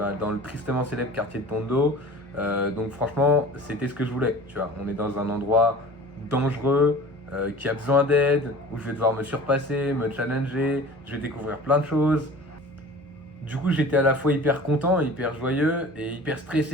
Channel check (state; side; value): normal; both; correlation 0.41